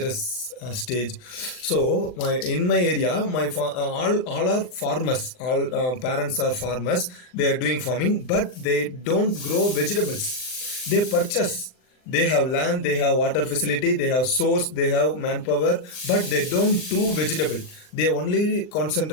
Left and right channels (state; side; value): late; right; 39 ms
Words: stage. So in my area, all are farmers. All parents are farmers. They are doing farming, but they don't grow vegetables. They purchase. They have land, they have water facility, they have source, they have manpower, but they don't do vegetable. They only